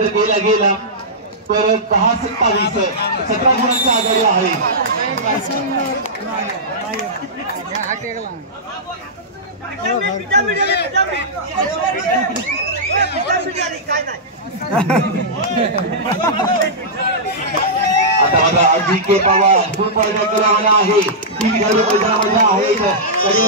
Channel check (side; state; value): both; normal; correlation -0.13